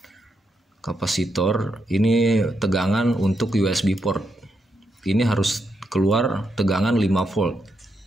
ini tegangan untuk USB port. Ini harus keluar tegangan 5 volt.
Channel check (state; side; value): normal; both; correlation 0.82